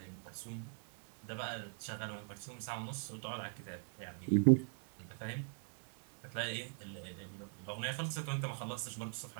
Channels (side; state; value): left; silent; 50 dB below the other